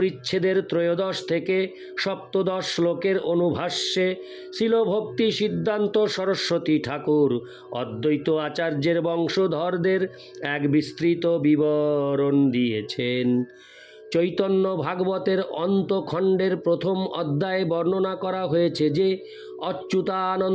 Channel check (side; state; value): both; identical; correlation 1.00